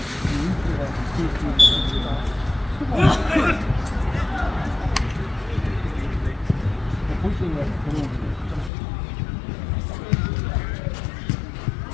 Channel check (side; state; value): right; drops out; at 8.7 s